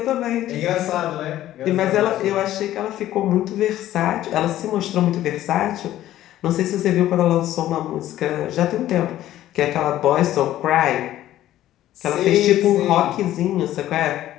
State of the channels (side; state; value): right; quieter; 13.5 dB